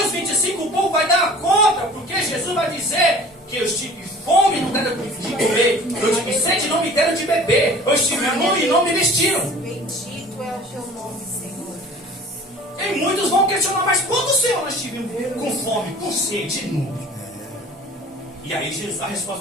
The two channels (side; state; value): both; normal; correlation 0.45